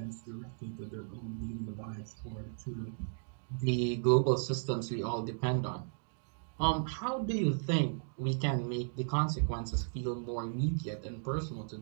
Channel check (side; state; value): left; silent; digital silence